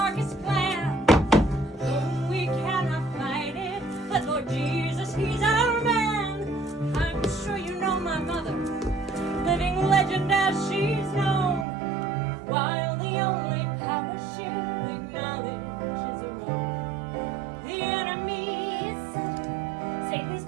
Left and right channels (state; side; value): drops out; left; at 11.7 s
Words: plan. Oh, we cannot fight it, but Lord Jesus, He's our man. I'm sure you know my mother, living legend as she's known, while the only power she'll acknowledge is her own. The enemy is subtle, Satan's